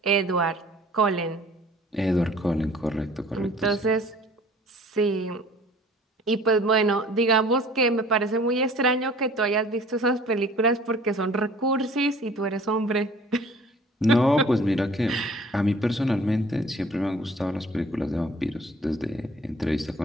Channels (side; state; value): both; normal; correlation 0.50